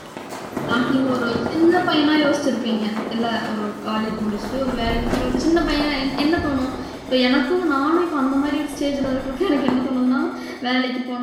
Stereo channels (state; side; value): identical; both; correlation 1.00